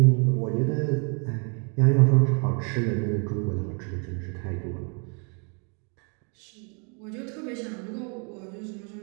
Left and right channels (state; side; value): quieter; left; 37.2 dB